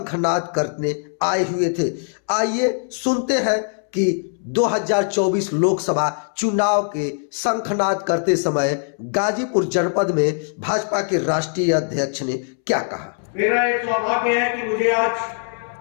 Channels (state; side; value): silent; right; 65 dB below the other